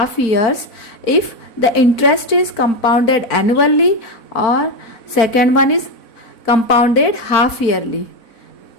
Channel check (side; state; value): right; late; 4.5 ms